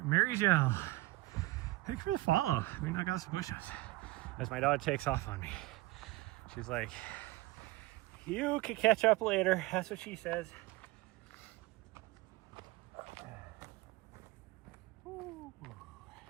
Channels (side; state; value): left; quieter; 19.7 dB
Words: Gel. Thanks for the follow. I mean, I got some push-ups. As my dog takes off on me. She's like, you can catch up later. That's what she says. Ooh.